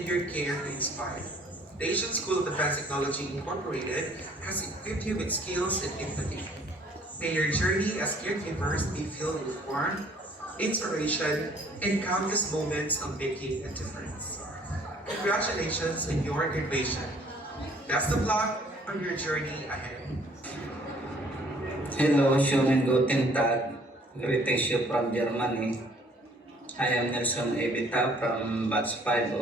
your care to inspire. The Asian School of Advanced Technology Incorporated has equipped you with skills and empathy. May your journey as caregivers be filled with warmth, inspiration, and countless moments of making a difference. Congratulations on your graduation. Best of luck on your journey ahead. Hello, schönen guten Tag. Greetings you from Germany. I am Nelson Evita from Batch 5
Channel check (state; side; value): normal; both; correlation 0.58